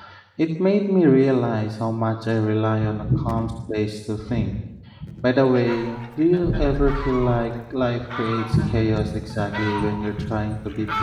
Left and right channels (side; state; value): both; identical; correlation 1.00